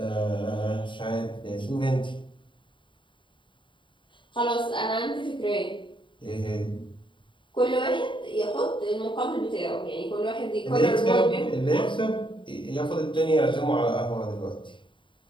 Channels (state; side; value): late; right; 0.24 ms